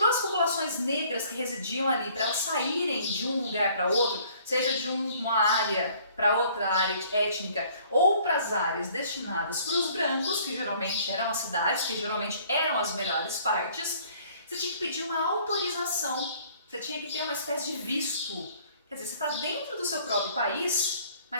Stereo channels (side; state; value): both; inverted; correlation -0.57